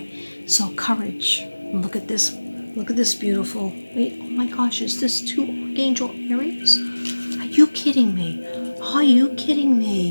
So courage. Look at this. Look at this beautiful. Wait. Oh my gosh. Is this two Archangel Ariels? Are you kidding me? Are you kidding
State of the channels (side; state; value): both; inverted; correlation -1.00